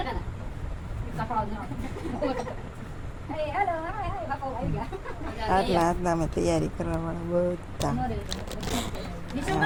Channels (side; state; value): both; identical; correlation 1.00